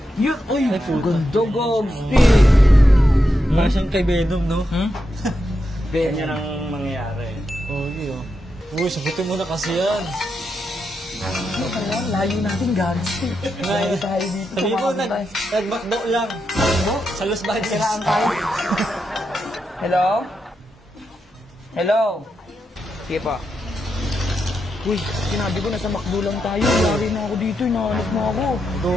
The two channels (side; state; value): both; normal; correlation 0.85